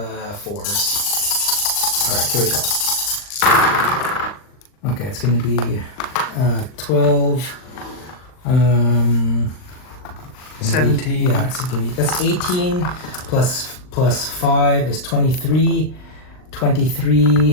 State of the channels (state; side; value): late; right; 39 ms